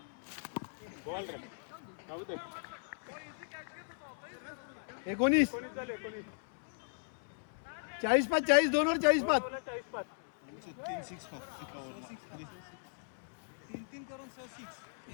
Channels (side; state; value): right; silent; 53 dB below the other